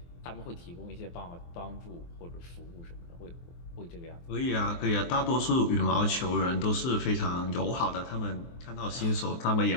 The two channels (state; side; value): late; right; 23 ms